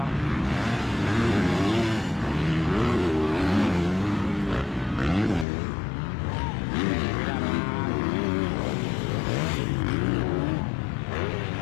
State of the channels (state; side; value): drops out; right; at 5.5 s